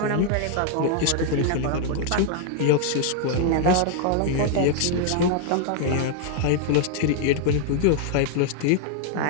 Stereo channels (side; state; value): both; different; correlation 0.00